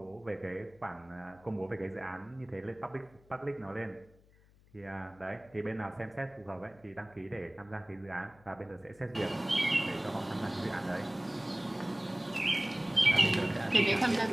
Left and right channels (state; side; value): noise; left; hum, 27 dB below the sound